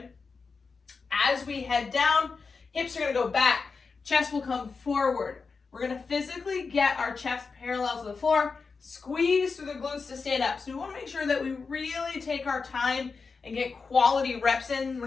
As we head down, hips are going to go back. Chest will come forward. We're going to physically get our chest parallel to the floor, squeeze through the glutes to stand up. So we want to make sure that we really take our time and get quality reps in. We're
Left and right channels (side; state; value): right; quieter; 4.8 dB